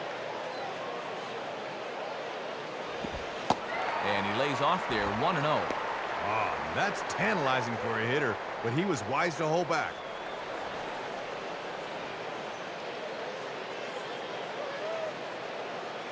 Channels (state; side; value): identical; both; correlation 1.00